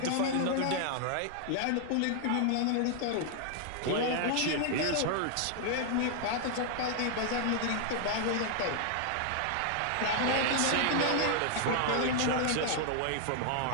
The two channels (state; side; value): different; both; correlation 0.00